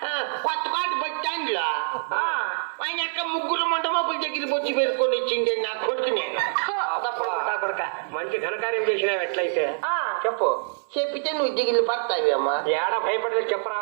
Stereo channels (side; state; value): left; silent; 62 dB below the other